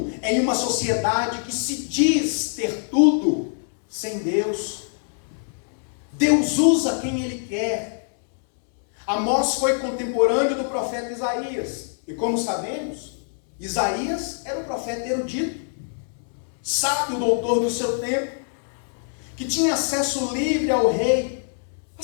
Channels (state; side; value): silent; right; 63 dB below the other